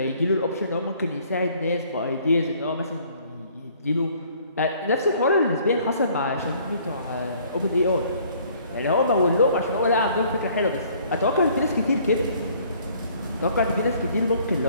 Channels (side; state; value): both; inverted; correlation -0.59